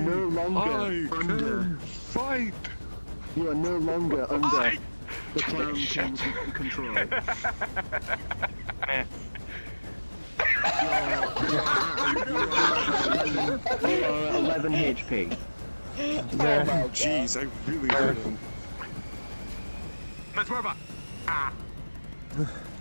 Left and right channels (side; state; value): both; inverted; correlation -1.00